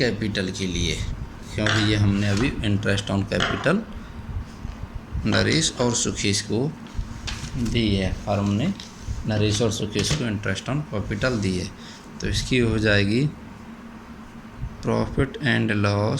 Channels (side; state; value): both; identical; correlation 1.00